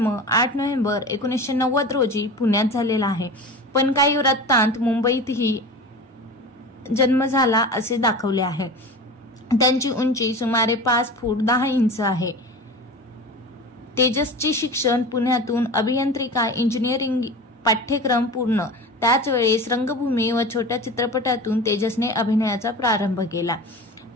8 नोव्हेंबर 1990 रोजी पुण्यात झालेला आहे, पण काही वृत्तांत मुंबईतही जन्म झाला असे दाखवले आहे। त्यांची उंची सुमारे 5 फूट 10 इंच आहे। तेजसचे शिक्षण पुण्यातून अभियांत्रिका इंजिनिअरिंग पाठ्यक्रम पूर्ण। त्याच वेळेस रंगभूमी व छोट्या चित्रपटातून तेजसने अभिनयाचा प्रारंभ केला।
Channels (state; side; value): normal; both; correlation 0.33